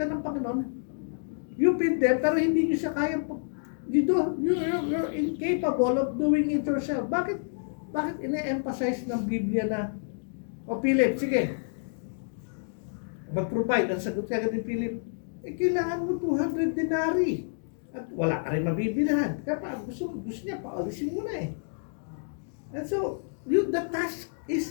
ng Panginoon, you feed them, pero hindi nyo siya kaya, you're incapable of doing it yourself. Bakit ine-emphasize ng Biblia na, Philip, sige, mag-provide, ang sagot ka ni Philip, kailangan mo 200 denari. At wala ka rin mabibilihan. Kaya gusto niya, paalisin mo na eh. And so, the task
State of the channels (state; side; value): silent; right; digital silence